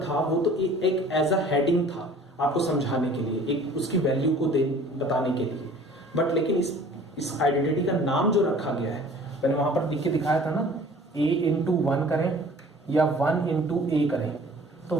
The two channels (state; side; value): normal; both; correlation 0.49